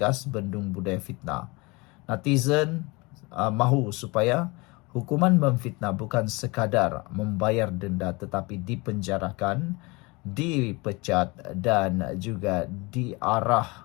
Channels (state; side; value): quieter; right; 25.7 dB